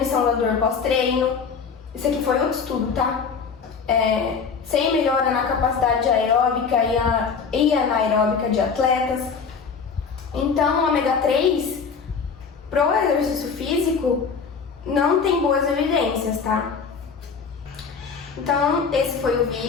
da dor pós-treino. Isso aqui foi outro estudo, tá? Sem melhora na capacidade aeróbica e anaeróbica de atletas. Então, o ômega 3, pro exercício físico, não tem boas evidências, tá? Então, esse foi o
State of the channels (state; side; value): quieter; right; 5.7 dB